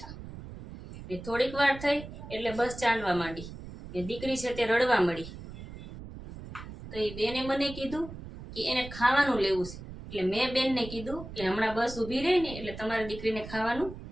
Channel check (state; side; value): noise; right; rumble, 12 dB below the sound